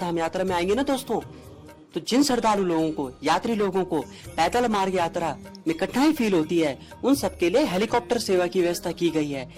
यात्रा में आएंगे ना दोस्तों, तो जिन श्रद्धालु लोगों को, यात्री लोगों को पैदल मार्ग यात्रा में कठिनाई फील होती है, उन सबके लिए हेलीकॉप्टर सेवा की व्यवस्था की गई है।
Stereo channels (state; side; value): identical; both; correlation 1.00